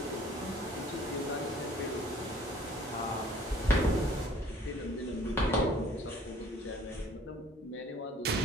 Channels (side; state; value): both; normal; correlation 0.55